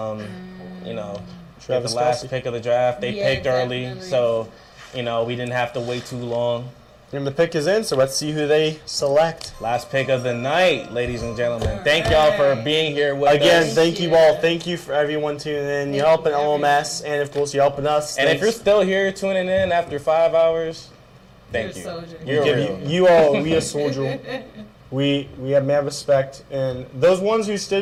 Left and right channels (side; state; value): both; identical; correlation 1.00